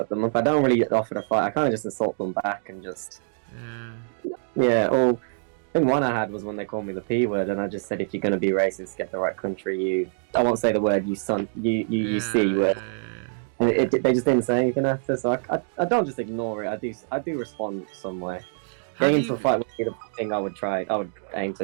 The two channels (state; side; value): silent; left; digital silence